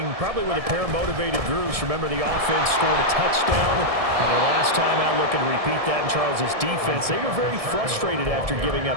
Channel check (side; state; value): left; late; 1.7 ms